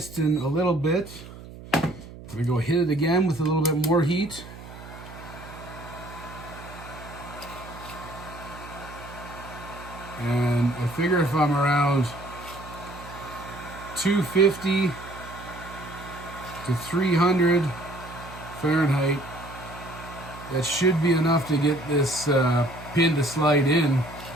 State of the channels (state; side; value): noise; right; hum, 15 dB below the sound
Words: a little bit. I'm gonna go hit it again with a little bit more heat. And I figure if I'm around 250 to 300 Fahrenheit, that should be enough to get this pin to slide in